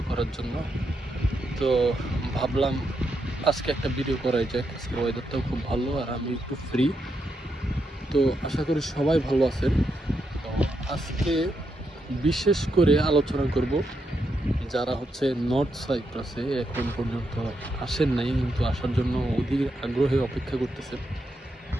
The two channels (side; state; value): both; normal; correlation 0.82